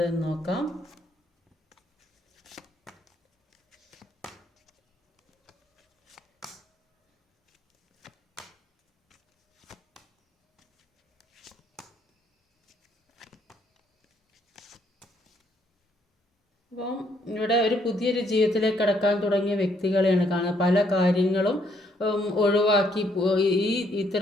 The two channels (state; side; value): normal; both; correlation 0.70